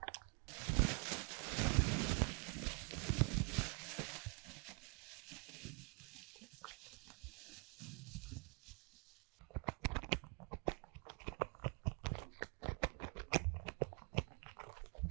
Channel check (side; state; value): left; quieter; 35.2 dB